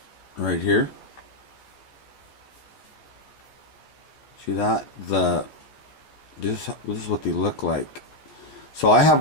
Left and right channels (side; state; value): right; late; 14 ms